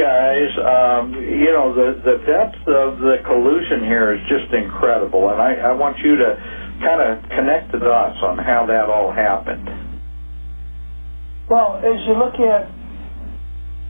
the depth of the collusion here is just incredible, and I want you to kind of connect the dots on how that all happened. Well, as you look at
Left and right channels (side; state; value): both; inverted; correlation -1.00